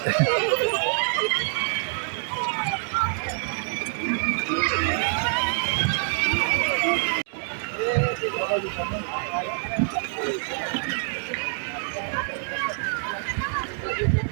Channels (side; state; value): left; silent; digital silence